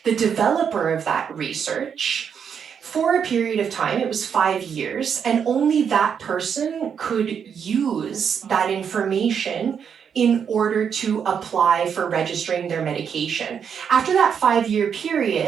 the developer of that research for a period of time. It was 5 years, and only that person could use that information in order to apply for registering their medication. After that 5-year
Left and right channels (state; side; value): quieter; left; 7.4 dB